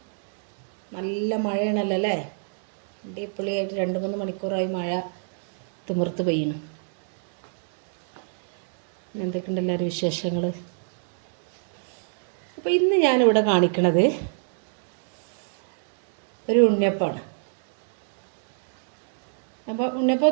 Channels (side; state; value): left; silent; digital silence